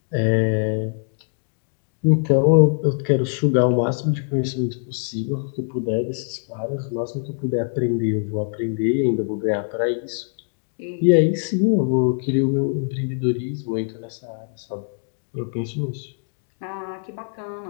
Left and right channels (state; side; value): silent; right; digital silence